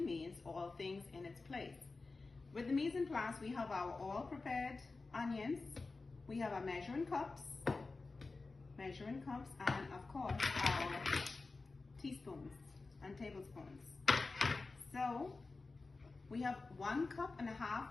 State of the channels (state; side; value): quieter; right; 3.8 dB